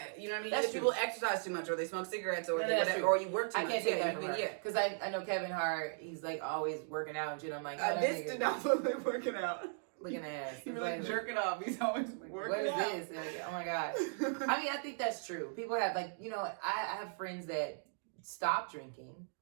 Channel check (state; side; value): silent; left; digital silence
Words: you know what I mean. That's Either people exercise too much, or they smoke cigarettes, or whatever, or you work too much. I can't take that from her. Yeah, because I know Kevin Hart. He's like always working out and shit. I'm like, this did not look like working out. Looking at He's like jerking off. He's always working out. What is this? Like, oh my god. I mean, I think that's true. People have I have friends that stopped drinking